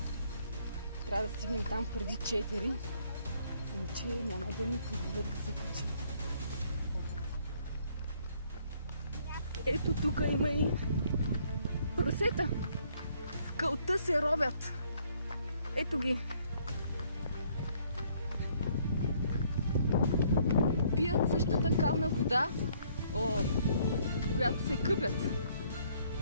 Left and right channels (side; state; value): both; inverted; correlation -0.65